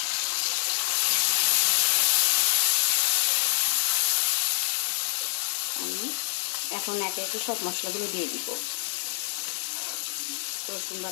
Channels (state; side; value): silent; right; digital silence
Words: আমি এখন একে একে সব মশলাগুলো দিয়ে দিব। রসুন